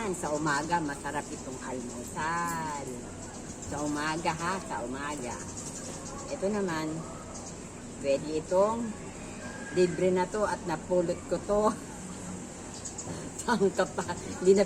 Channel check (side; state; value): both; identical; correlation 1.00